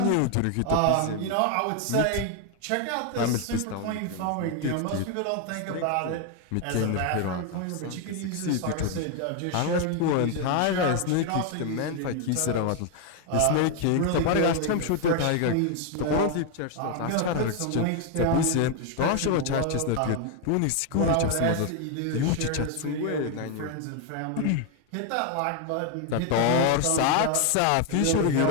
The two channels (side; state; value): both; different; correlation 0.01